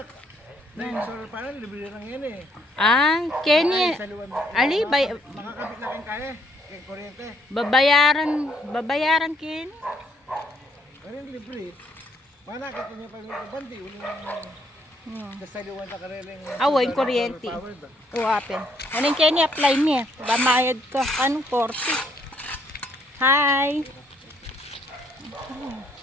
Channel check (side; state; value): both; normal; correlation 0.69